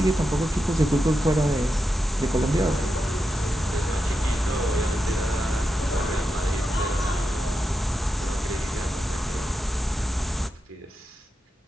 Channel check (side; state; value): both; normal; correlation 0.88